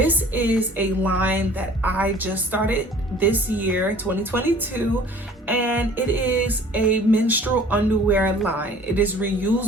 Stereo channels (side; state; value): both; normal; correlation 0.49